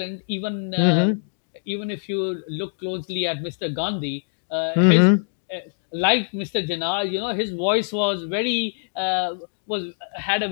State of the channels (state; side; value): silent; right; digital silence